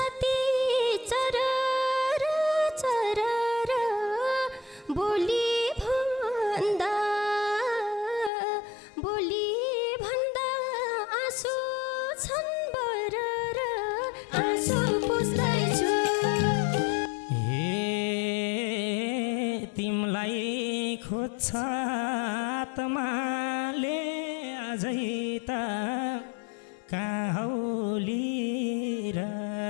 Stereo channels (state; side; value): drops out; right; at 8.3 s